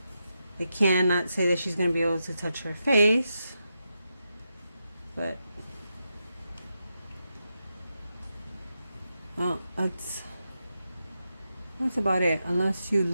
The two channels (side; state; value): both; inverted; correlation -0.86